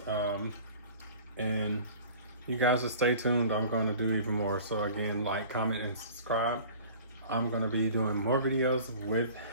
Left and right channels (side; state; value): both; inverted; correlation -0.45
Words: And you guys just stay tuned. I'm going to do even more. So again, like, comment, and subscribe. I'm going to be doing more videos with